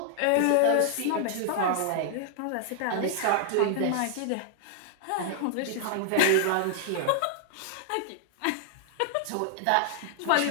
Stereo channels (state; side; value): different; both; correlation 0.00